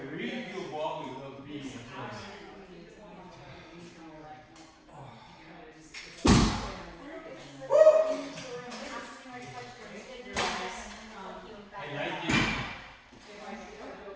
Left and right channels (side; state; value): both; identical; correlation 1.00